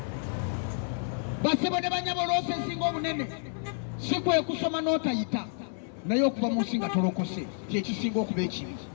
Basebo ne banyabo loosi esinga obunene si kwe kusoma n'otayita, naye okuva mu nsi nga tolokose kyekisinga okuba ekibi.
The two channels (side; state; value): right; silent; 56 dB below the other